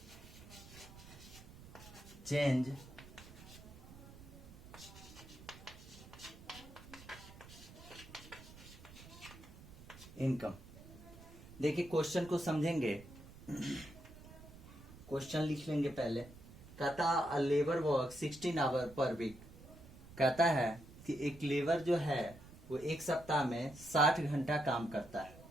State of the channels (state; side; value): noise; right; rumble, 18 dB below the sound